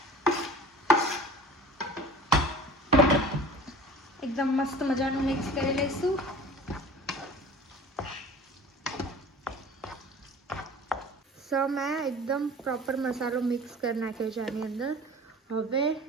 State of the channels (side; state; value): both; normal; correlation 0.41